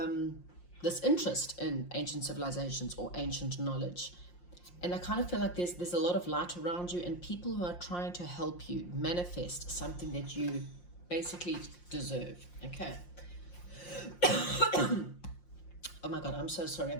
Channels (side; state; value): right; late; 5.7 ms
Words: interest in ancient civilizations or ancient knowledge, and I kind of feel like there's a lot of light around you and people who are trying to help you manifest something that you basically deserve. Okay. Oh my god, I'm so sorry,